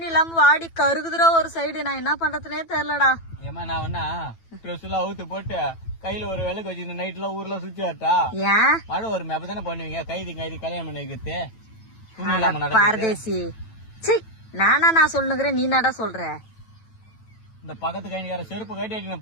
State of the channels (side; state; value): right; late; 9.1 ms